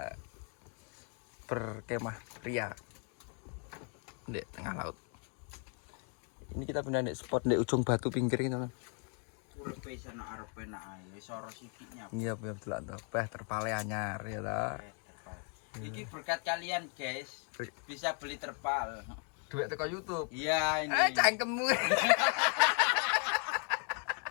berkemah pria di tengah laut. Ini kita pindah di spot di ujung batu pinggir ini teman. Ulepe sana arepe nak ae wis ora sikiknya. Iya betul tuh. Terpale anyar ya ta. Iki berkat kalian guys. Bisa beli terpal. Duit teko YouTube. Iya ini. Cangkemmu.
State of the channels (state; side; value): quieter; right; 39.1 dB